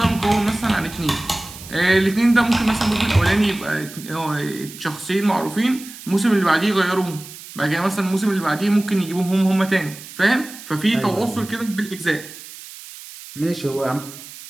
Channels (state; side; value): noise; right; hiss, 15 dB below the sound